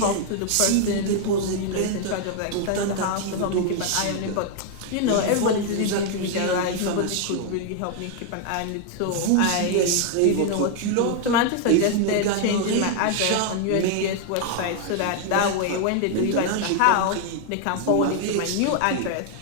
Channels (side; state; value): both; different; correlation 0.00